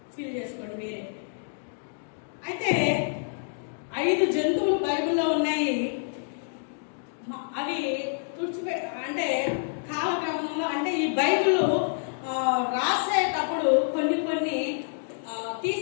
ఫీల్ చేసుకోండి మీరే. అయితే 5 జంతువులు బైబిల్లో ఉన్నాయి. అవి అంటే కాలక్రమంలో, అంటే ఈ బైబిల్ రాసేటప్పుడు కొన్ని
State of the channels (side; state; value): right; silent; digital silence